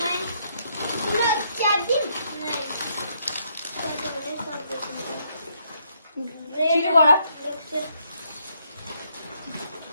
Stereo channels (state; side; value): inverted; both; correlation -0.72